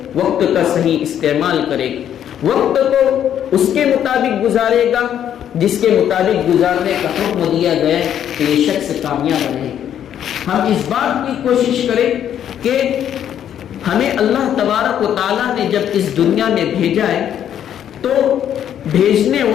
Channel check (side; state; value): right; quieter; 9.9 dB